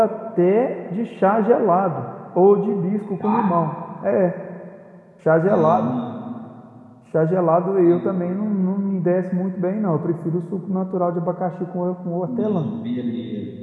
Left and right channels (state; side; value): identical; both; correlation 1.00